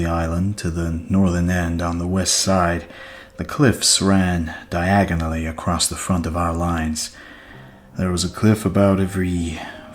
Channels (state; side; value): identical; both; correlation 1.00